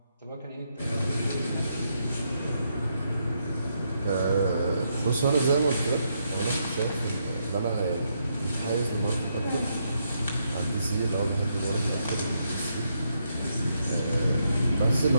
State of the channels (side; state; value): both; inverted; correlation -0.79